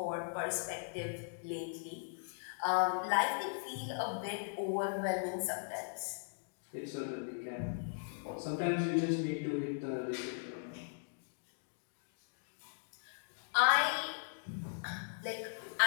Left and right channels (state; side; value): silent; right; digital silence